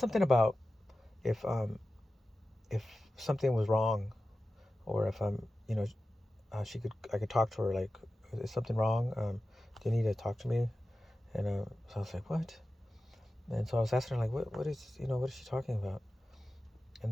about if if something was wrong, or if I could talk to her, like, is something wrong? Do you need to talk to me? And so I was like, what? And so I was asking her, like, what is she talking about?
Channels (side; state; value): both; normal; correlation 0.94